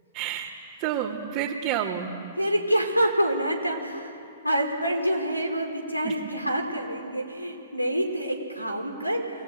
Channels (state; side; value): inverted; both; correlation -0.73